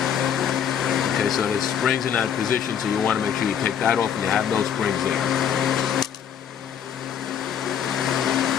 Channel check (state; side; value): quieter; right; 8.5 dB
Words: Okay, so the spring's in that position, so you want to make sure you take that off and you have those springs there.